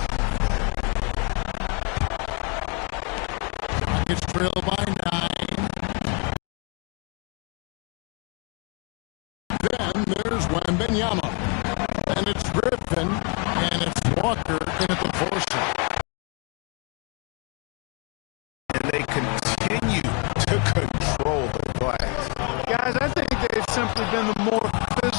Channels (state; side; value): quieter; right; 34.2 dB